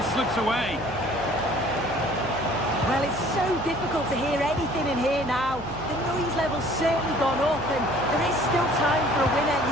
slips away. Well, it's so difficult to hear anything in here now. The noise level's certainly gone up, and there is still time for a winner.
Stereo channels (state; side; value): noise; right; hum, 15 dB below the sound